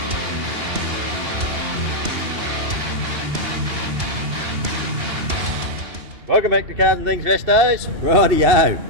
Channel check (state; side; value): late; left; 2.8 ms